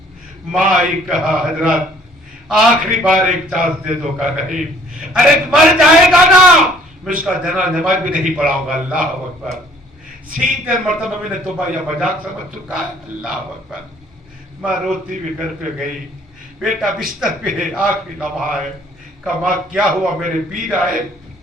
ماں آئی. کہا حضرت آخری بار ایک چانس دے دو. کا نہیں, ارے مر جائے گا نا, میں اس کا جنازہ نماز بھی نہیں پڑھاؤں گا. اللہ اکبر. 70 مرتبہ میں نے توبہ یا مذاق سمجھ چکا ہے. اللہ اکبر. ماں روتی بھی گھر پہ گئی. بیٹا بستر پہ ہے, آخری لمحہ ہے. کہا ماں کیا ہوا؟ میرے پیر آئے.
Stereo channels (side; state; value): both; normal; correlation 0.58